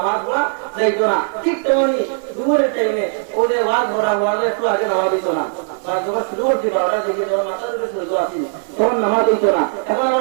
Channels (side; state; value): left; silent; 59 dB below the other